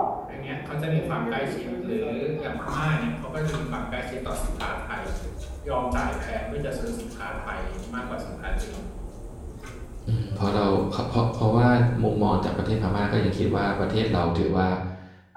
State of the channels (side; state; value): both; identical; correlation 1.00